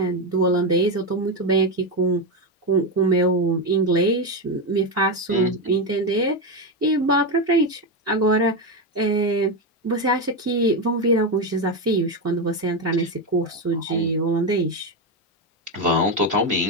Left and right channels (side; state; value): both; normal; correlation 0.11